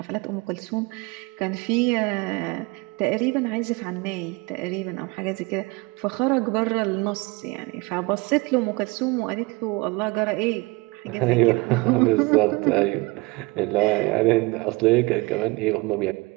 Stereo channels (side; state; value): left; quieter; 25.5 dB